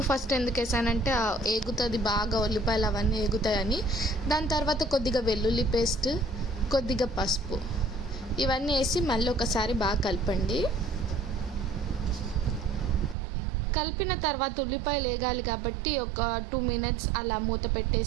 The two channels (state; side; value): drops out; left; at 13.2 s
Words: ఫస్ట్ ఎందుకు వేసానంటే ఏగుతుంది బాగా, ఉల్లిపాయలు అవన్నీ ఏగుతాయని. దాని తర్వాత కొద్దిగా వెల్లుల్లి పేస్ట్, కొద్దిగా పసుపు ఇవన్నీ వేసి మళ్ళీ ఒకసారి బాగా కలపండి. కలిపిన తర్వాత ఉల్లిపాయలు వేగాలి కాబట్టి ఒక 2 మినిట్స్ అలా మూత